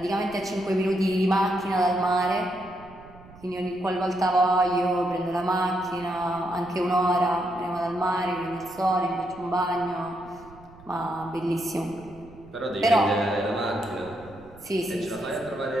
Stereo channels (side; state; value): right; noise; rumble, 22 dB below the sound